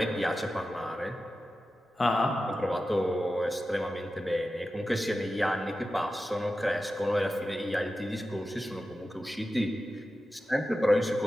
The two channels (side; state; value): both; normal; correlation 0.93